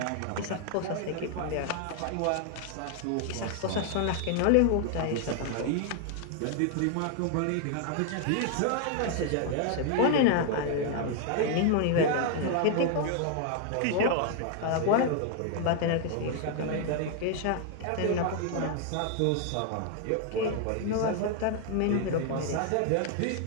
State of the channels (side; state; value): both; different; correlation 0.00